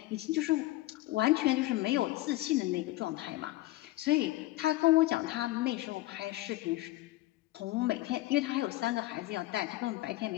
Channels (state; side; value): quieter; right; 18.0 dB